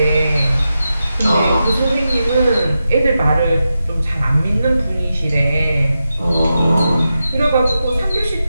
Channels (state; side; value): inverted; both; correlation -0.90